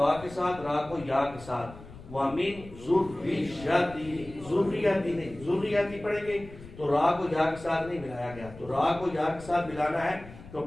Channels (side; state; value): left; noise; rumble, 17 dB below the sound